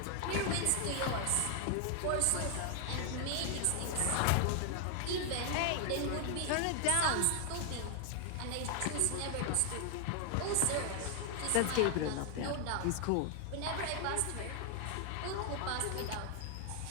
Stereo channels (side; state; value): both; different; correlation 0.00